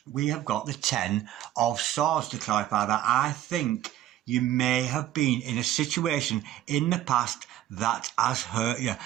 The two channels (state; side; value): quieter; left; 12.8 dB